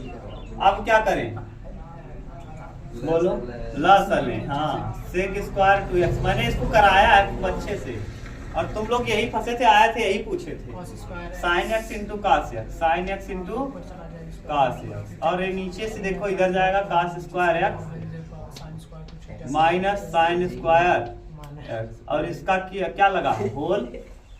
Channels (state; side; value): identical; both; correlation 1.00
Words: अब क्या करें, बोलो लसलें। हाँ सेक स्क्वायर 2x, मैंने इसको कराया है अच्छे से, और तुम लोग यही फंसे थे, आए थे यही पूछे थे। Sine x into cos x, sine x into cos x, और ये नीचे से देखो इधर जाएगा cos square x minus sine square x, और इसका क्या लगा होल